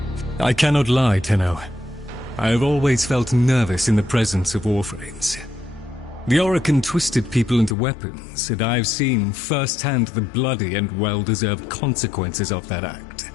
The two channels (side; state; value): right; drops out; at 7.8 s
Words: I cannot lie, Tenno. I have always felt nervous in the presence of Warframes. The Orokin twisted people into weapons, and I've seen firsthand the bloody and well-deserved consequences of that act.